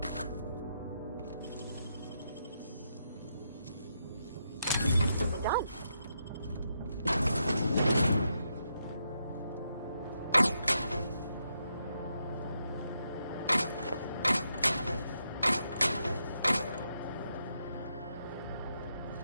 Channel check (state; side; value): inverted; both; correlation -0.81